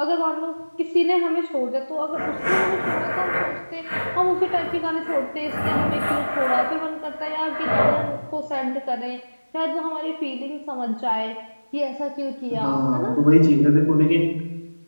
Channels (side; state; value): both; inverted; correlation -1.00